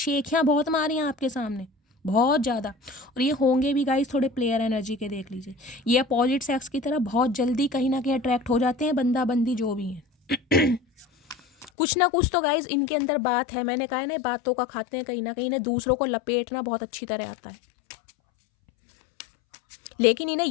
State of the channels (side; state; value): right; drops out; at 11.7 s